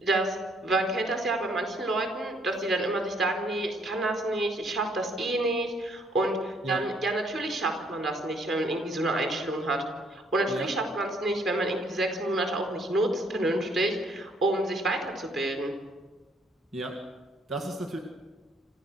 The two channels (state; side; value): normal; both; correlation 0.66